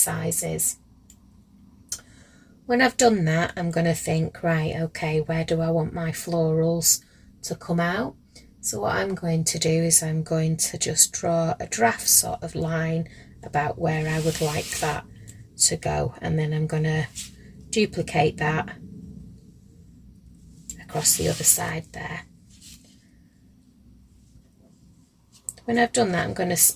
When I've done that, I'm going to think, right, okay, where do I want my florals to come out? So what I'm going to do is I'm going to just draw a draft sort of line about where I would like that to go, and then I'm going to duplicate that across the other side there. When I've done that, I'm going to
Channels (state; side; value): identical; both; correlation 1.00